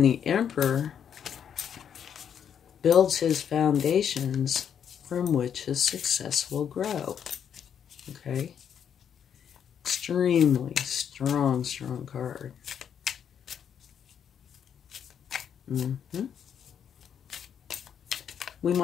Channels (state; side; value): quieter; right; 8.4 dB